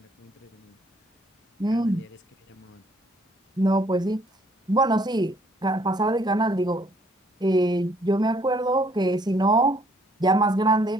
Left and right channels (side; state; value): both; normal; correlation 0.64